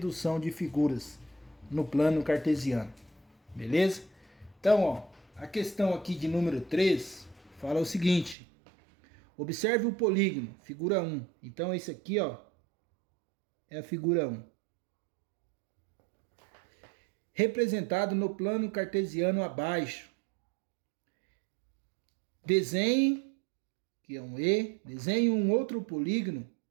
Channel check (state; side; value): drops out; left; at 8.3 s